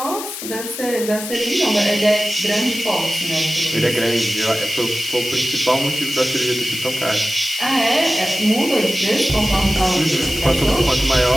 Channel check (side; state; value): left; noise; hiss, 9 dB below the sound